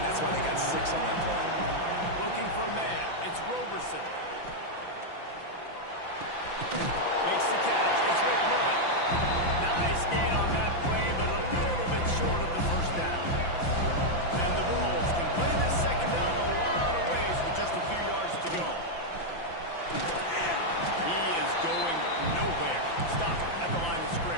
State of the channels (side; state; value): right; late; 5.9 ms